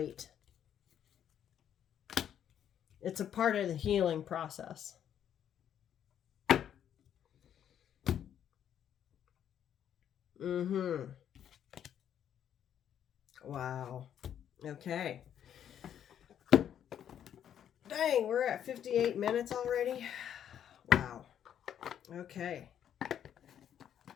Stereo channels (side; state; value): right; quieter; 9.6 dB